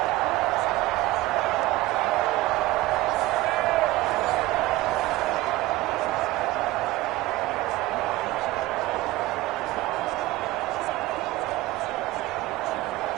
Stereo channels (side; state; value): left; quieter; 17.9 dB